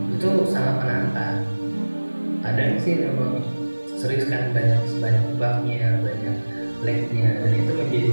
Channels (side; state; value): both; inverted; correlation -1.00